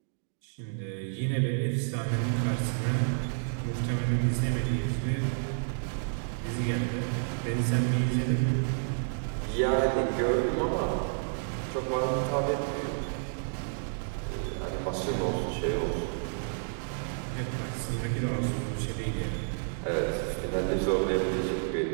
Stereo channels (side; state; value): left; silent; digital silence